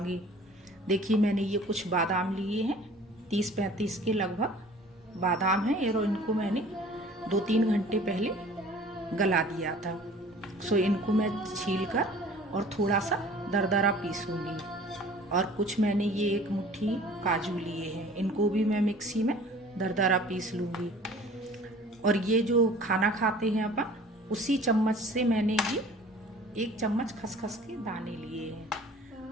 देखिए मैंने ये कुछ बादाम लिए हैं, 30-35 के लगभग बादाम हैं और इनको मैंने 2-3 घंटे पहले गला दिया था। सो इनको मैं छील कर और थोड़ा सा दरदरा पीसूंगी। और कुछ मैंने ये एक मुट्ठी काजू लिए हैं, इनको भी मैं मिक्सी में दरदरा पीस लूँगी। और ये जो खाना खाते हैं अपन, उसी चम्मच से मैंने ये 1 चम्मच खसखस के दाने लिए हैं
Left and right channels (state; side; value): normal; both; correlation 0.48